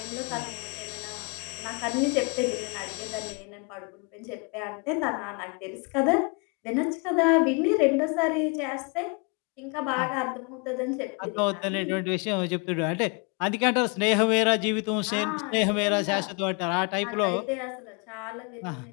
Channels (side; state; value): right; quieter; 34.0 dB